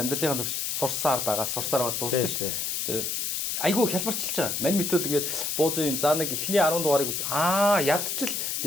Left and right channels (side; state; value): left; noise; hiss, 1 dB below the sound